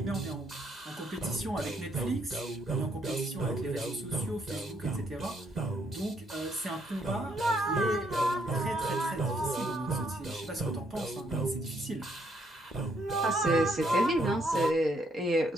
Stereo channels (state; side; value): normal; both; correlation 0.72